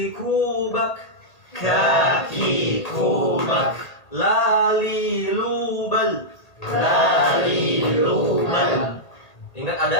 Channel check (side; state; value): right; late; 1.8 ms